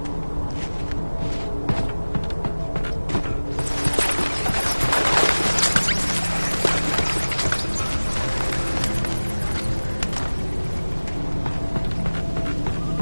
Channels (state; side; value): inverted; both; correlation -1.00